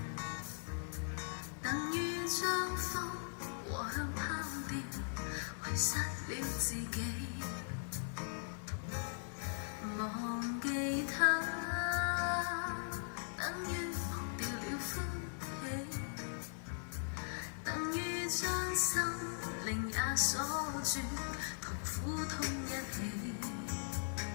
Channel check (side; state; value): right; silent; 51 dB below the other